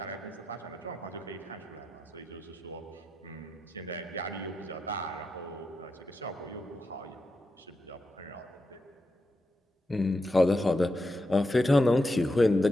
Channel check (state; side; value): normal; both; correlation 0.86